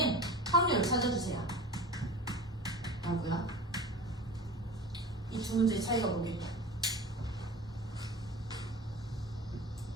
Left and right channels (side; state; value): both; normal; correlation 0.35